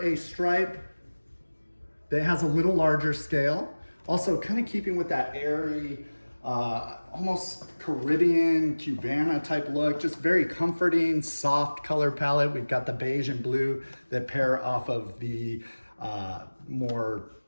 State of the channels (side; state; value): both; inverted; correlation -1.00